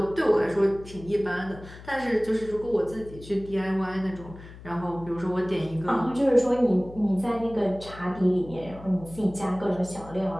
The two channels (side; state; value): left; noise; hum, 17 dB below the sound